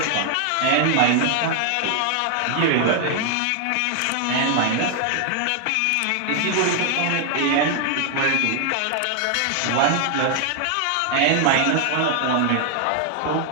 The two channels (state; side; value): different; both; correlation 0.00